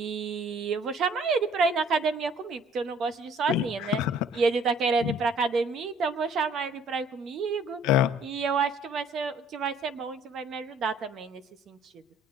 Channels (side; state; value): both; normal; correlation 0.57